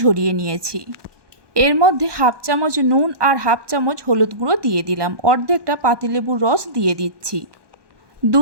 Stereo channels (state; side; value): late; left; 1.2 ms